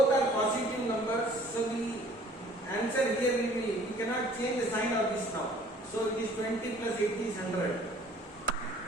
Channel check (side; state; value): both; normal; correlation 0.54